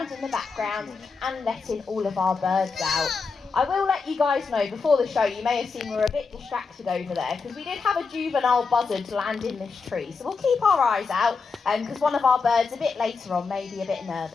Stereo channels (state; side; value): quieter; right; 4.8 dB